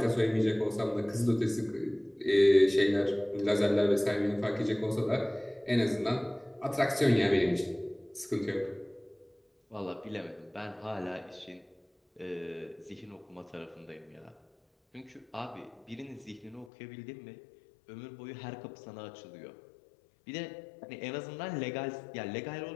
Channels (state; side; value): drops out; right; at 16.7 s